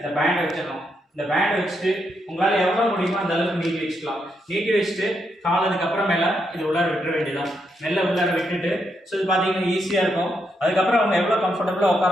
பேண்ட் வச்சிடணும். இந்த பேண்ட் வச்சுட்டு உங்களால் எவ்வளோ முடியுமோ அந்த அளவுக்கு நீட்டி வச்சுக்கலாம். நீட்டி வச்சுட்டு கால் அதுக்கப்புறமேல இது உள்ளார விட்டுற வேண்டியதான். மெல்ல உள்ளார விட்டுட்டு ஸோ இது பார்த்தீங்கன்னா ஈஸியாக இருக்கும். அதுக்கப்புறம் அவங்க எவ்வளோ கம்ஃபர்டபுளாக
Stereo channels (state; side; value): normal; both; correlation 0.80